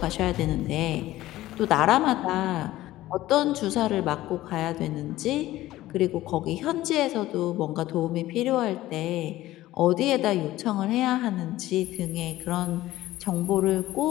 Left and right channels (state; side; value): quieter; right; 15.8 dB